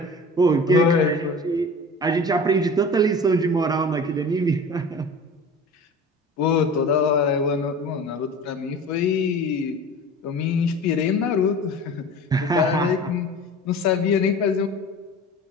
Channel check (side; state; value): both; normal; correlation 0.38